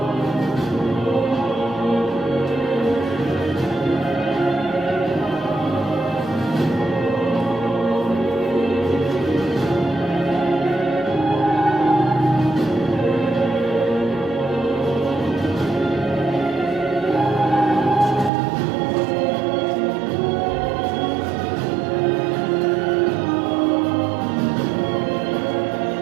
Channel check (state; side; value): drops out; left; at 18.3 s